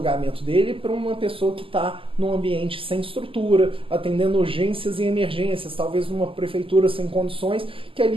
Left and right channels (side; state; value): left; late; 0.26 ms